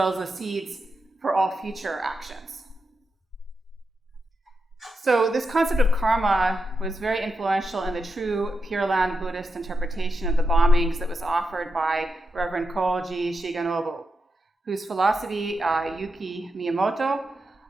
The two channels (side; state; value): both; normal; correlation 0.87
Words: as the seeds for all future actions. So this concept of karma was very influential in the true Pure Land Buddhist interpretation of the bombings that was offered by Reverend Koji Shigenobu, whose philosophy Yuki Miyamoto